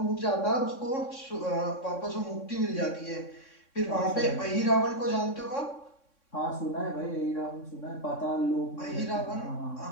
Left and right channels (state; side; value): late; right; 3.6 ms